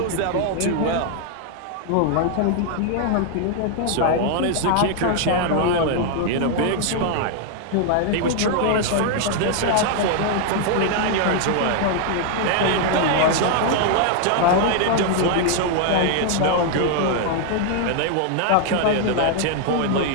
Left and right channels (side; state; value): both; different; correlation 0.00